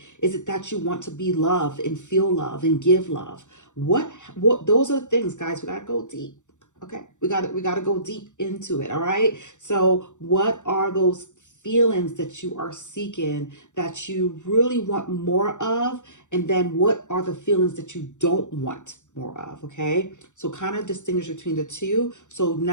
Is it that you want to be loved and feel love and give love? What those are the things, guys, we got to go deep. Okay, we got to go deep into it, all right? So what are those feelings that you are seeking that you really want more of, and then what are the feelings that you don't want more of? Okay, so kind of distinguish between the two. So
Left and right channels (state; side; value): late; right; 0.85 ms